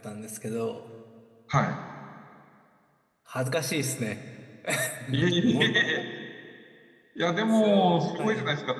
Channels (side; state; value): both; identical; correlation 1.00